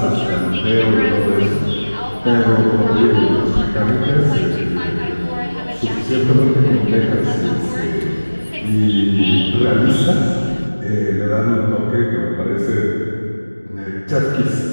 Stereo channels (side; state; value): both; inverted; correlation -1.00